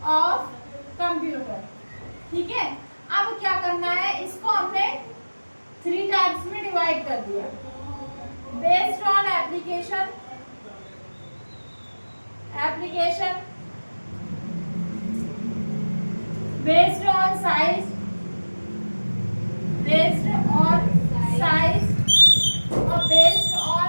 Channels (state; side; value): inverted; both; correlation -1.00